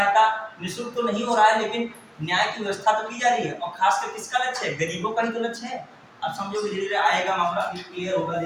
निःशुल्क तो नहीं हो रहा है लेकिन न्याय की व्यवस्था तो की जा रही है, और खासकर किसका लक्ष्य है? गरीबों का ही तो लक्ष्य है। अब समझो धीरे धीरे आएगा मामला, क्लियर होगा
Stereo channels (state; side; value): identical; both; correlation 1.00